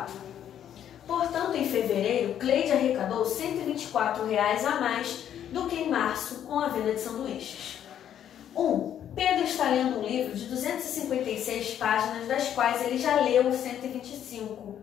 Portanto, em fevereiro, Cleide arrecadou R$ 124 a mais do que em março com a venda de sanduíches. Pedro está lendo um livro de 256 páginas, das quais ele já leu 125.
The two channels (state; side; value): quieter; right; 10.0 dB